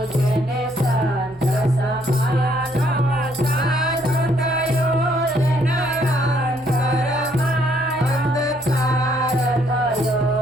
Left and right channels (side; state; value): both; normal; correlation 0.68